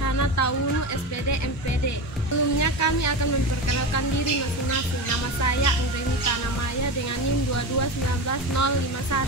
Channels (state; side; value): normal; both; correlation 0.22